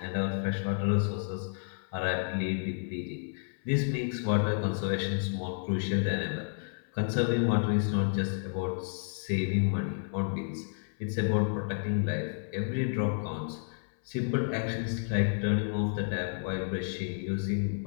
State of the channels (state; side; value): silent; right; 57 dB below the other